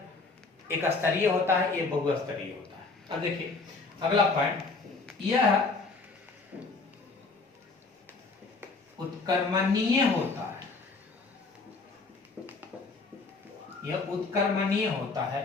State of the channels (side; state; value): right; quieter; 4.0 dB